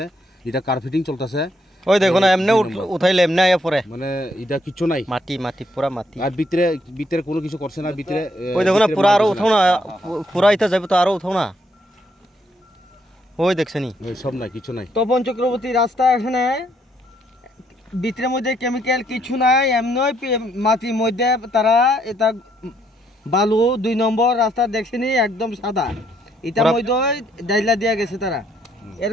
এটা কার্পেটিং চলতেছে ওই দেখো না এমনি উঠাইলে এমনি আয়া পড়ে মানে এটা কিছু নাই মাটি পুরা মাটি আর ভিতরে কোনো কিছু করছে না ভিতরে ওই দেখো না পুরা আরো উঠাও না পুরা ইটা যাবে তো আরো উঠাও না ওই দেখছনি সব নাই কিছু নাই তপন চক্রবর্তী রাস্তা এখানে ভিতরের মধ্যে কেমিক্যাল কিছু নাই এমনি মাটির মধ্যে তারা এটা বালু 2 নম্বর রাস্তা দেখছেনি একদম সাদা এটার মধ্যে ডাইলা দিয়া গেছে তারা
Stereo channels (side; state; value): both; normal; correlation 0.72